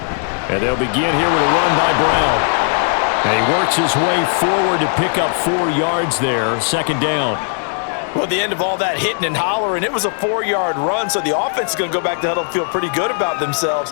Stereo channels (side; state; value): right; silent; 64 dB below the other